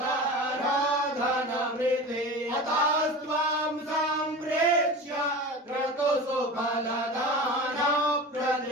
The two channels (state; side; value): normal; both; correlation 0.32